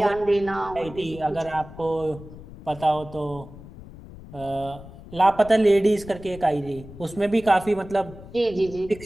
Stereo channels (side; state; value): left; noise; rumble, 16 dB below the sound